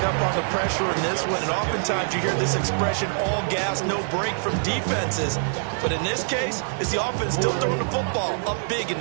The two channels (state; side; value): silent; left; digital silence